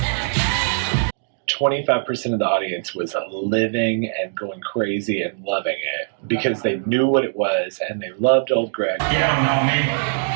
%25 of the audience was living and going crazy and loving it because they knew what it was and they loved old Greg. You don't know me.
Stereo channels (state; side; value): silent; left; digital silence